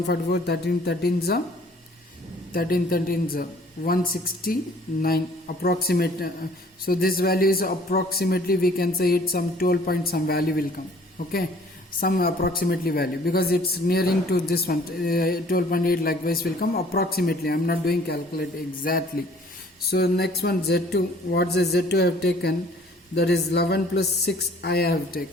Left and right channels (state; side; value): normal; both; correlation 0.55